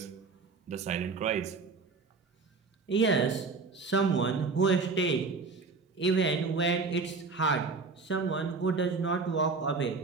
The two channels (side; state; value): left; quieter; 4.3 dB